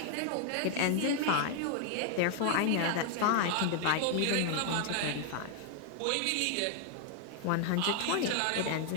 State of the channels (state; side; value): different; both; correlation 0.00